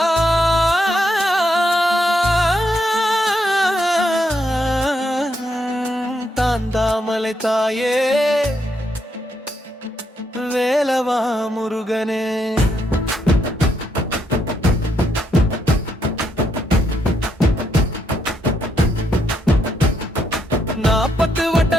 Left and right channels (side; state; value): both; normal; correlation 0.78